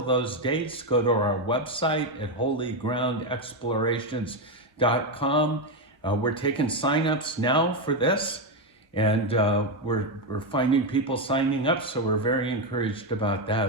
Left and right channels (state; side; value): normal; both; correlation 0.08